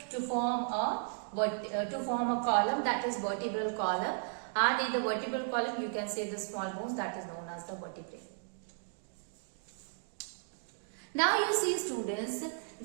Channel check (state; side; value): silent; left; digital silence